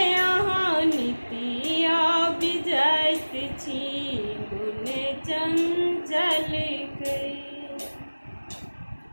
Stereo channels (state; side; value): inverted; both; correlation -1.00